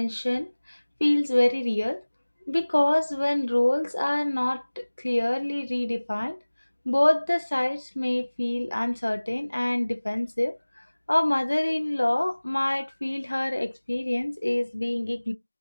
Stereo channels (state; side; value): inverted; both; correlation -1.00